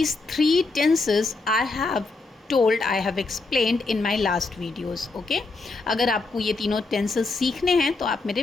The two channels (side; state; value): right; quieter; 3.6 dB